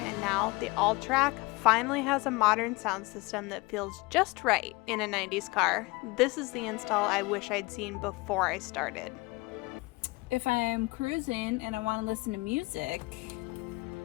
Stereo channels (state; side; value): quieter; right; 23.9 dB